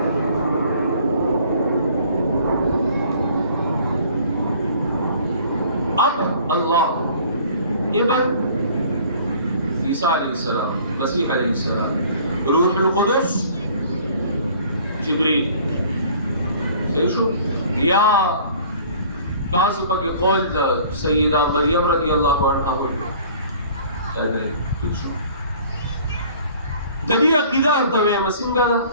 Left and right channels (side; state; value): both; inverted; correlation -0.52